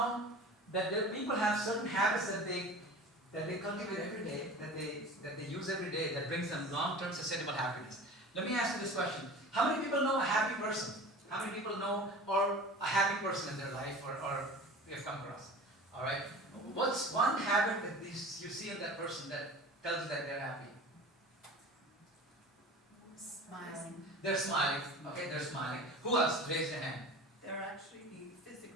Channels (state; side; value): normal; both; correlation 0.37